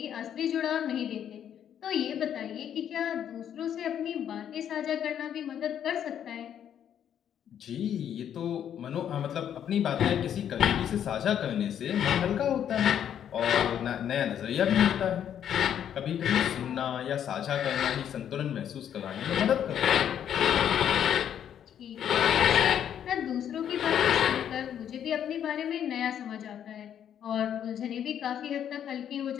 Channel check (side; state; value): right; quieter; 9.5 dB